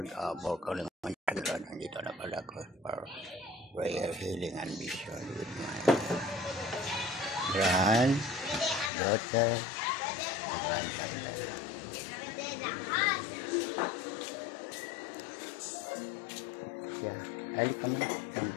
for calling on you, Lord. Nandito na pala ko for prayer, healing, and vision with my granddaughter, grandson. Yeah, ali ka muna.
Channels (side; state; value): right; drops out; at 8.9 s